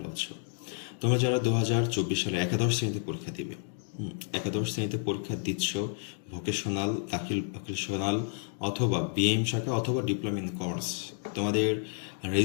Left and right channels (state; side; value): silent; right; 58 dB below the other